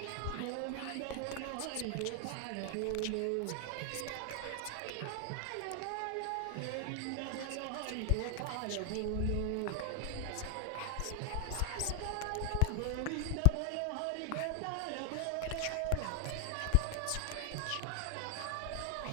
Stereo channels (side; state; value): both; different; correlation 0.00